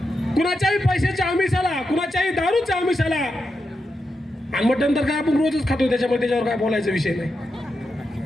कुणाच्याही पैशाच्या आमिषाला, कुणाच्याही दारूच्या आमिषाला, आणि मटण तर काय आपण रोजच खातो, त्याच्यावर काय बोलायचा विषय नाही.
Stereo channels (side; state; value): both; normal; correlation 0.87